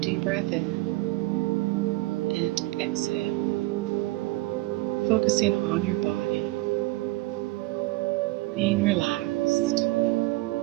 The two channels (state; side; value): quieter; left; 20.9 dB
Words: breath in and exhale, focusing on your body, being relaxed.